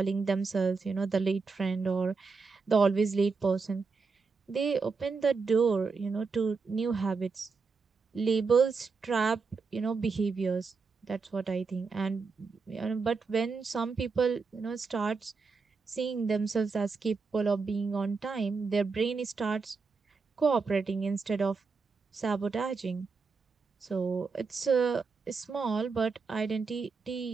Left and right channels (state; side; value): quieter; left; 4.6 dB